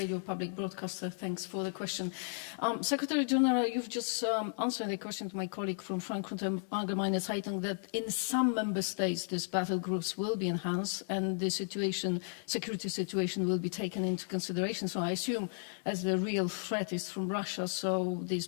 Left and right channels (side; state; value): right; silent; digital silence